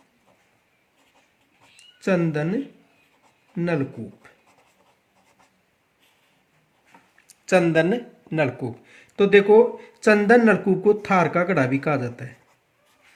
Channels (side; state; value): both; identical; correlation 1.00